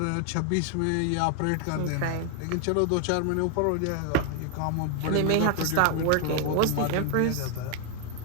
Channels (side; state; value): both; different; correlation 0.00